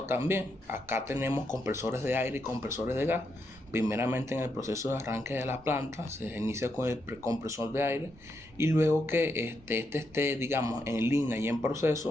también. Acá tenemos compresores de aire y compresores de gas. Primeramente, en el proceso de arranque de la planta se inicia con el compresor de aire, y luego que esté, digamos, en línea y en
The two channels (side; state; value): both; normal; correlation 0.81